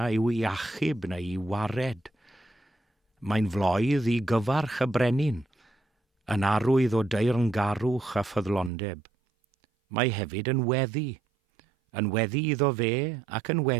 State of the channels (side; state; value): left; drops out; at 8.7 s